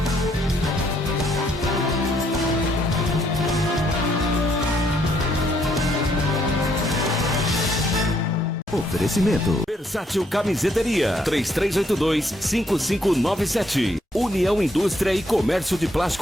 Oferecimento Versátil Camiseteria 3382-5597. União Indústria e Comércio de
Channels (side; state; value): both; normal; correlation 0.71